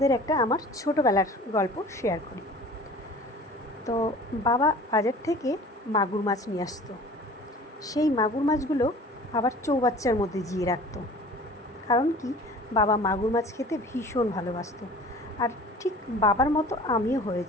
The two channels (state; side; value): normal; both; correlation 0.44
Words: একটা আমার ছোটোবেলার গল্প শেয়ার করি। তো বাবা বাজার থেকে মাগুর মাছ নিয়ে আসতো। সেই মাগুর মাছগুলো আবার চৌবাচ্চার মধ্যে জিয়ে রাখতো। কারণ কি, বাবা মাগুর মাছ খেতে ভীষণ ভালোবাসতো। আর ঠিক বাবার মতো আমিও